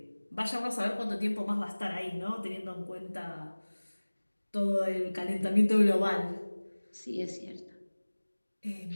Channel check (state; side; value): inverted; both; correlation -1.00